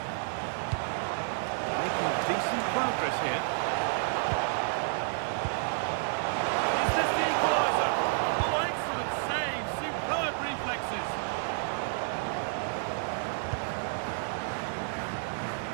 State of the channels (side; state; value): left; silent; digital silence